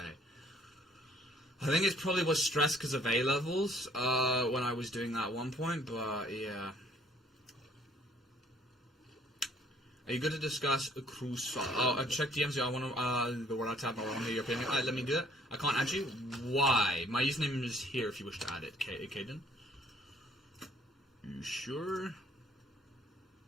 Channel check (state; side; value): normal; both; correlation 0.61